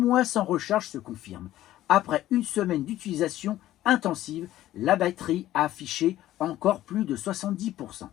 sans recharge se confirme. Après une semaine d'utilisation intensive, la batterie a affiché encore plus de 70%.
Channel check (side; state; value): right; quieter; 14.1 dB